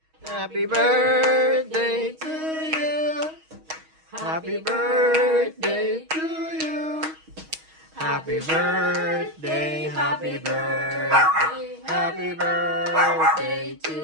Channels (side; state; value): left; late; 6.3 ms